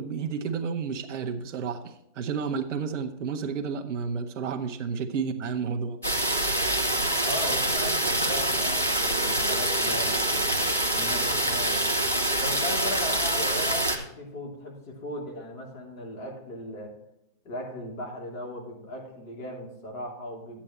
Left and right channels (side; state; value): both; inverted; correlation -0.34